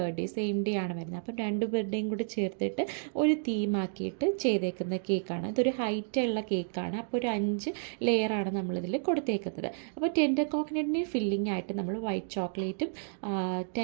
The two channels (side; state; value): left; silent; digital silence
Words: സെയിം ഡേ ആണ് വരുന്നത്. അപ്പോൾ 2 ബർത്ത്ഡേയും കൂടി ചേർത്തിട്ട് ഒരു തീമാക്കിയിട്ട് ചെയ്തേക്കുന്ന കേക്കാണ്. ഇതൊരു ഹൈറ്റുള്ള കേക്കാണ്. അപ്പോൾ ഒരു 5 ലെയറാണ് നമ്മളിതിൽ കൊടുത്തേക്കുന്നത്. അപ്പോൾ ടെൻഡർ കോക്കനട്ടിന് ഫില്ലിംഗ് ആയിട്ട് നമ്മൾ വൈറ്റ് ചോക്ലേറ്റും